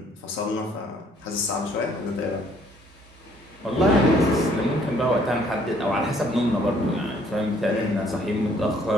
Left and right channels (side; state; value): both; normal; correlation 0.63